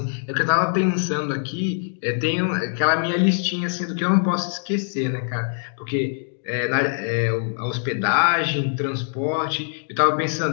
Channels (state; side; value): silent; right; digital silence